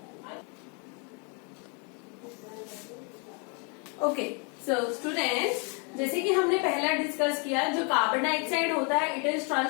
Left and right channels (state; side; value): quieter; right; 36.0 dB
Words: ओके, सो स्टूडेंट्स, जैसे कि हमने पहला डिस्कस किया, जो कार्बन डाइऑक्साइड होता है it is